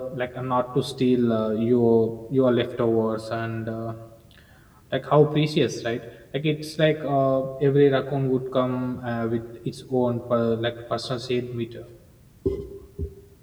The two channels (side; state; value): both; identical; correlation 1.00